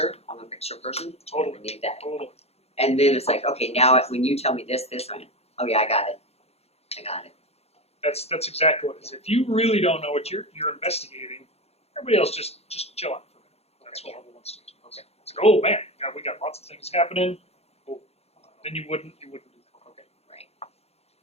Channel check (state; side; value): late; right; 0.30 ms